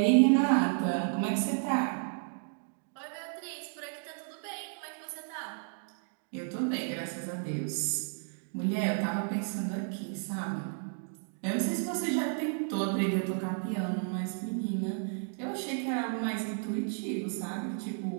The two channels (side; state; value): left; silent; 56 dB below the other